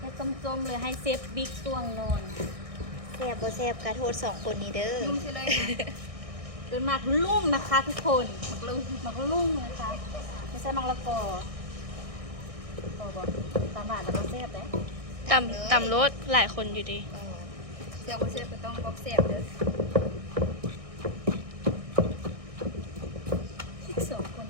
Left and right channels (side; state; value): left; late; 1.6 ms